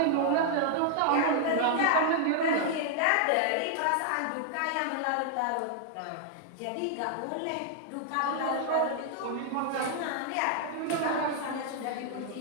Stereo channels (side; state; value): both; different; correlation 0.00